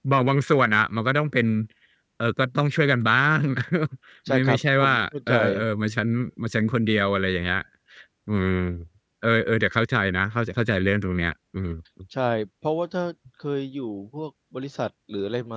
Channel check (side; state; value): both; identical; correlation 1.00